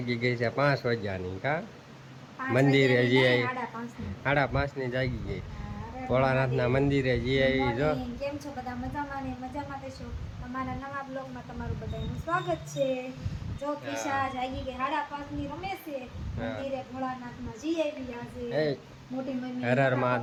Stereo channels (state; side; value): identical; both; correlation 1.00